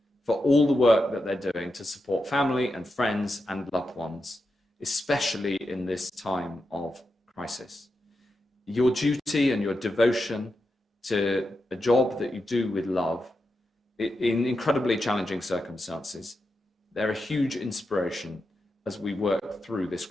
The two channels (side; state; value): both; normal; correlation 0.88